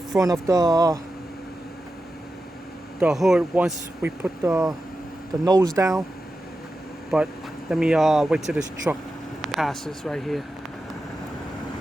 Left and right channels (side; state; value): both; normal; correlation 0.91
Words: of the hood once we put the nose down. But let me wait till this truck passes right here.